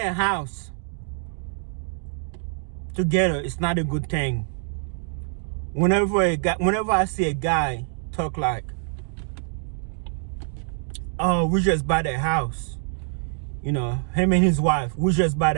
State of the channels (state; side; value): silent; left; 62 dB below the other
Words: house together is not a good thing. Whenever I see a guy talk like, "Oh, we just bought a house," him and his wife, we just bought